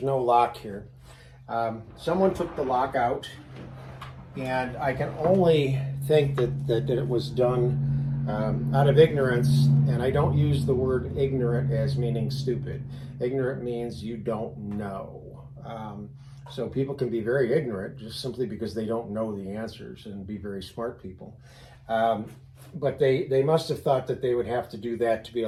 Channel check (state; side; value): identical; both; correlation 1.00